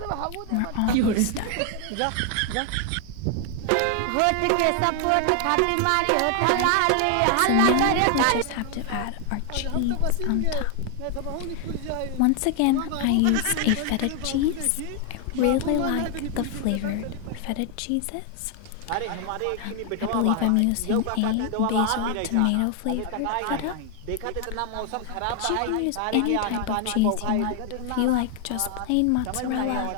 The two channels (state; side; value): different; both; correlation 0.00